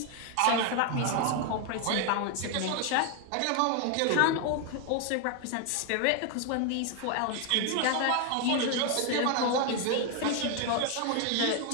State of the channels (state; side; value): different; both; correlation 0.01